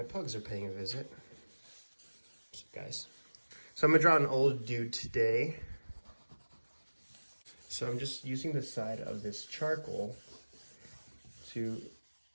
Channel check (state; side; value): inverted; both; correlation -1.00